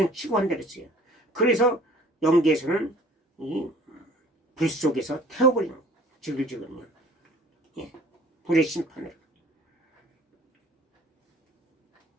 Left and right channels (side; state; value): both; normal; correlation 0.51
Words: 치고 한다 그랬어요. 그래서 영계에서는 이 불 속에서 태워버리는 거예요. 지글지글요. 불의 심판으로.